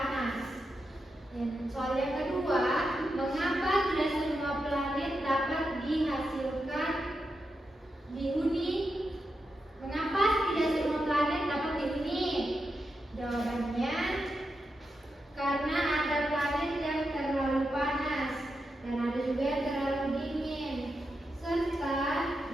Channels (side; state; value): both; normal; correlation 0.87